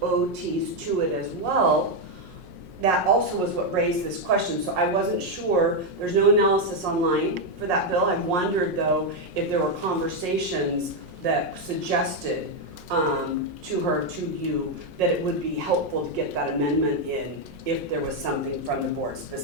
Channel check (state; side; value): late; left; 5.5 ms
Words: OTs to it as well, that also was what raised this question. So I wasn't sure, there's no analysis online for that bill. I wondered though if there were conversations that suggested to her, to you, that it would be helpful to get that amendment in if there was something from the board